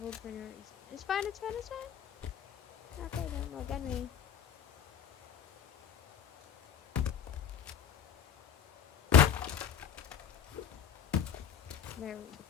for no reason. It's fine, it's fine, it's fine. Okay, don't look at me. There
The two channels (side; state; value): right; quieter; 8.3 dB